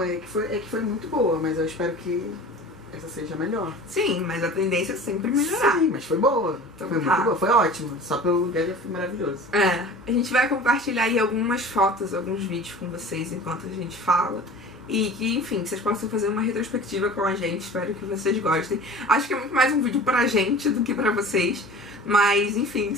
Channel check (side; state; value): both; normal; correlation 0.40